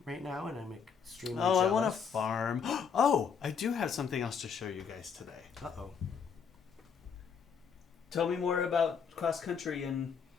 right now, and I'm extremely jealous. I want a farm. Oh, I do have something else to show you guys today. Uh-oh. Tell me more about cross country and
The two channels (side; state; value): right; quieter; 6.6 dB